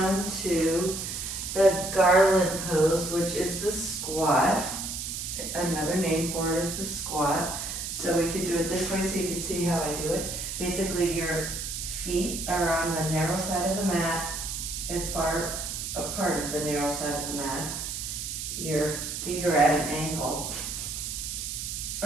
to the garland pose, which is the squat. Another name for it is the squat. So we could do it this way so you can see how I do it. Basically, your feet are on the narrow side of the mat, as far apart as the narrow side of the mat. Your feet are at an angle,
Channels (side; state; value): right; noise; hiss, 5 dB below the sound